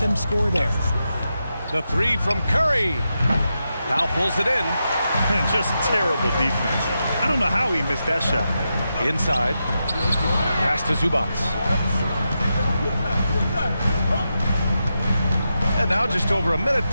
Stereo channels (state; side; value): inverted; both; correlation -0.87